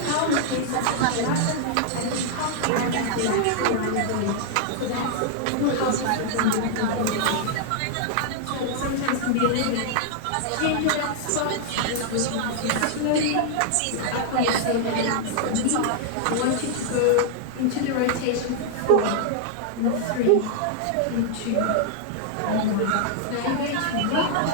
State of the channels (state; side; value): different; both; correlation -0.01